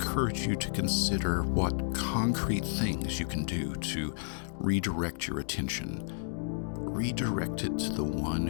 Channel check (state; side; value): silent; right; digital silence